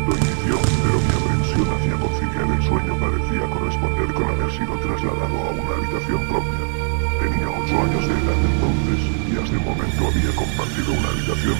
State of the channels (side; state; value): left; silent; 65 dB below the other